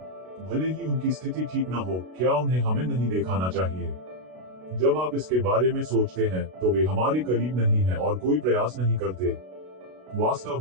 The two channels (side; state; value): left; late; 32 ms